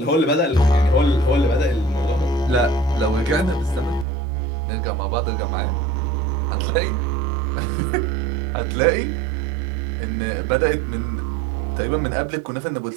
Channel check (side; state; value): left; drops out; at 4.0 s